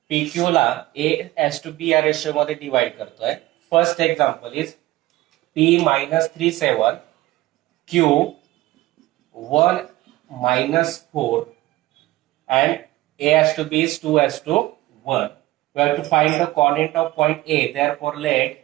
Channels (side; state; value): left; quieter; 17.5 dB